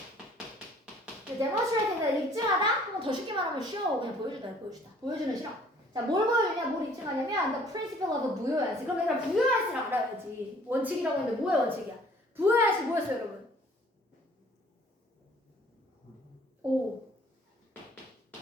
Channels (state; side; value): normal; both; correlation 0.56